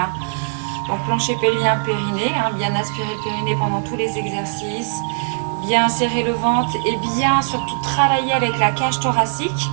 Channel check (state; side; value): silent; left; 56 dB below the other